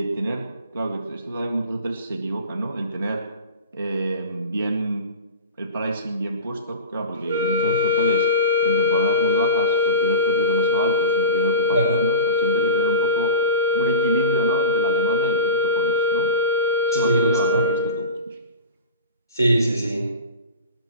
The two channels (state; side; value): inverted; both; correlation -0.32